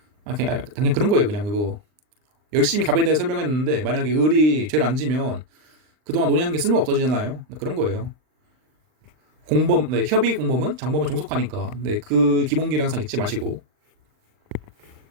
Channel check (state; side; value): late; left; 39 ms